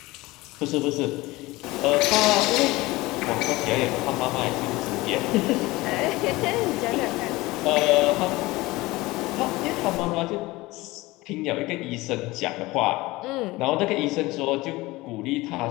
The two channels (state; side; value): quieter; right; 20.5 dB